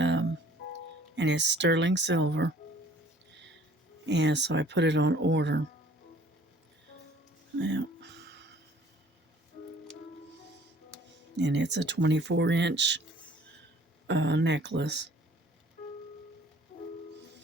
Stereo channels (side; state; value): both; normal; correlation 0.55